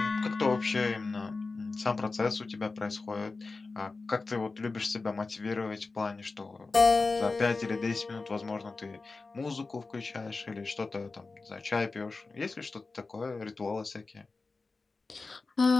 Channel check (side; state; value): right; quieter; 3.8 dB